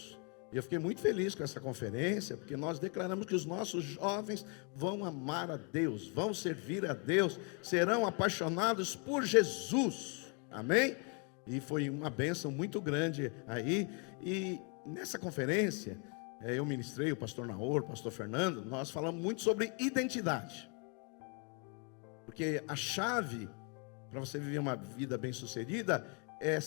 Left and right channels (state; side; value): quieter; right; 36.6 dB